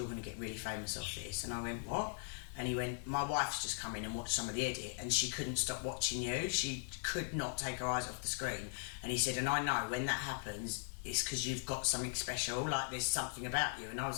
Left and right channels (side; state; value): right; silent; digital silence